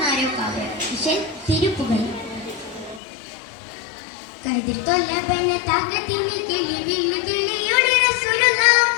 വിഷയം തിരുപ്പുകൾ. കതിർതൊല്ലബന തകതിനി കിളി വിളി കിളിയൊളി റസൂലുള്ള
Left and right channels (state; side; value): drops out; right; at 3.0 s